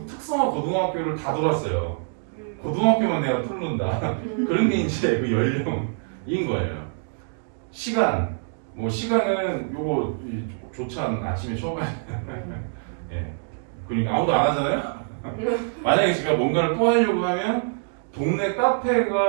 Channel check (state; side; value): silent; left; digital silence